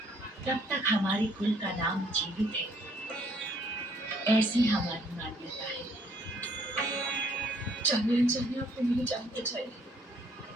तब तक हमारे कुल का नाम जीवित है, ऐसी हमारी मान्यता है। जानिए आपने मेरी जान बचाई।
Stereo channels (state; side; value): normal; both; correlation 0.64